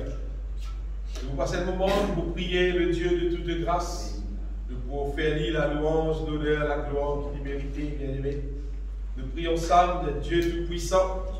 Et vous passez le moment où vous priez le Dieu de toute grâce, de pouvoir faire lire la louange, l'honneur, la gloire qu'il mérite, bien aimé. Nous prions ensemble de Dieu Tout-Puissant,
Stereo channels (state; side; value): identical; both; correlation 1.00